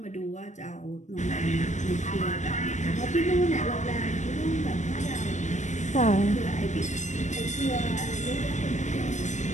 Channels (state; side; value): late; right; 0.35 ms